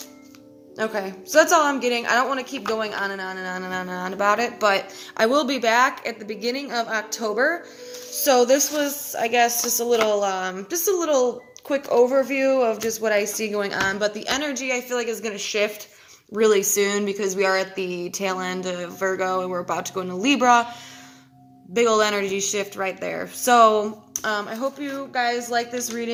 Okay, so that's all I'm getting. I don't want to keep going on and on and on and on and on about it, but I will be back at the beginning of October. So this was, I guess, just a little quick overview of just what I see going on. But the energy, I feel like, is going to shift really soon, because we are at the tail end of Virgo and we're about to go into Libra. Big old energy shift right there. So I hope you guys like this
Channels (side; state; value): both; identical; correlation 1.00